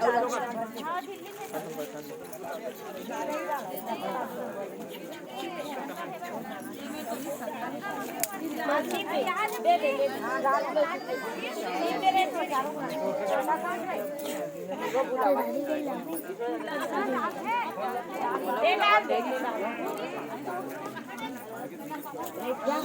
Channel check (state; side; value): identical; both; correlation 1.00